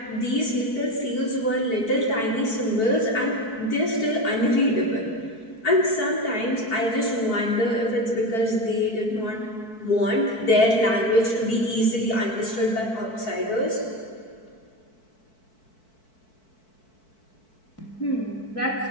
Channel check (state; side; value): late; right; 4.6 ms